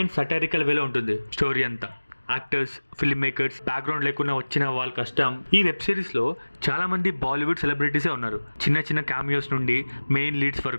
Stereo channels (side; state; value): both; inverted; correlation -1.00